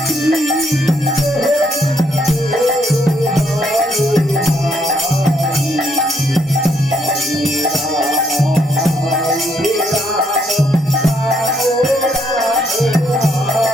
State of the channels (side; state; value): both; normal; correlation 0.72